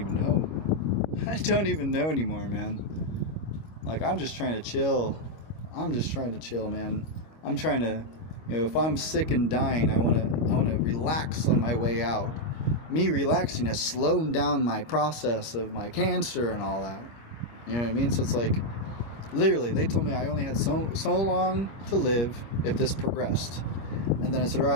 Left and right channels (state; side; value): late; right; 25 ms